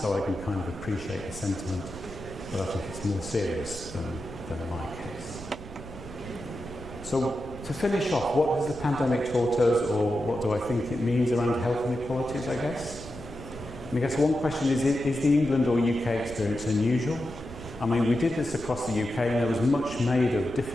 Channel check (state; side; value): noise; right; rumble, 14 dB below the sound